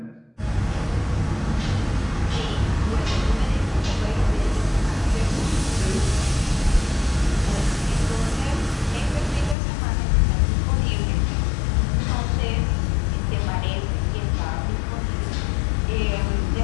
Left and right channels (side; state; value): right; drops out; at 9.6 s